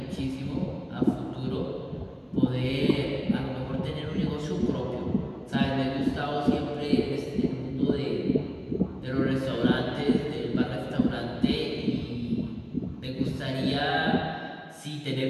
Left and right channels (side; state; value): both; identical; correlation 1.00